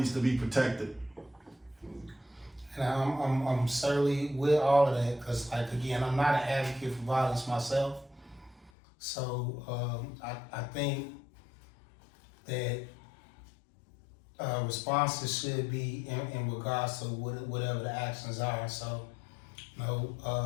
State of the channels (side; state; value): right; drops out; at 8.7 s